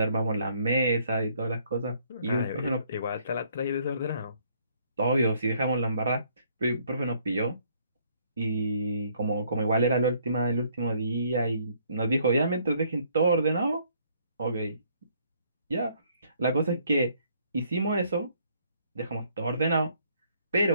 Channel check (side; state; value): both; inverted; correlation -0.65